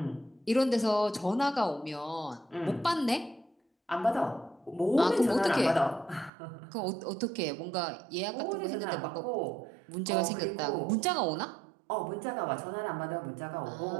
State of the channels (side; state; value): left; drops out; at 6.3 s